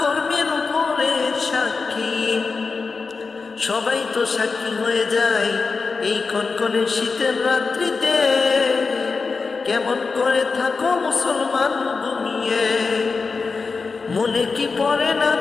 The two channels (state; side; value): quieter; right; 4.5 dB